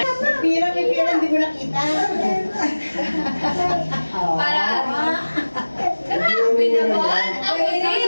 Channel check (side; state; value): both; inverted; correlation -1.00